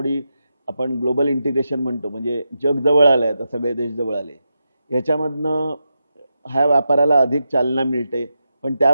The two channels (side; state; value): both; inverted; correlation -0.88